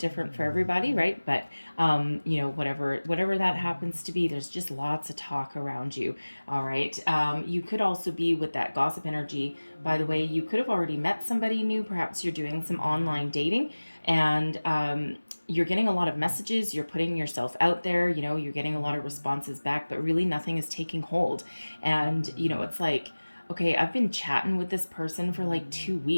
for everybody, right? But you know, whatever that happens to be, there's just lots of talk around you. All right, you could also be with that gossip energy. By the way, you could have already met somebody new. Perhaps you're doing some online dating, and you're getting a lot of messages, you're putting yourself out there, you know, you're getting a lot of responses back, but really nothing is taking hold. And, you know, it's like, okay, I've been chatting with this person for like 2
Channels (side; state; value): both; inverted; correlation -1.00